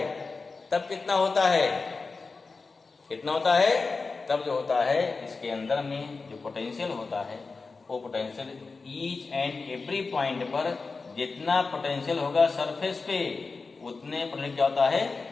तब कितना होता है, कितना होता है, तब जो होता है इसके अंदर में जो पोटेंशियल होता है, वो potential each and every point पर जितना पोटेंशियल होगा सरफेस पे, उतने पर क्या होता है,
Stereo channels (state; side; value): quieter; right; 4.2 dB